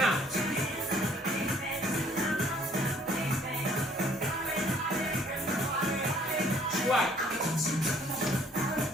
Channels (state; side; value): normal; both; correlation 0.60